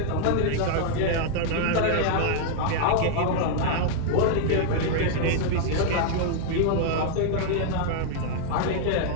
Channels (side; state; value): both; different; correlation -0.01